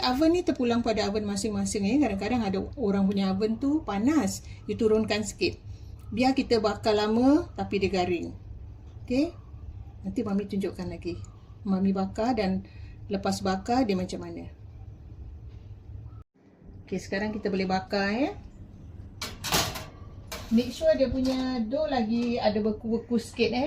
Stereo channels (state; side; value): identical; both; correlation 1.00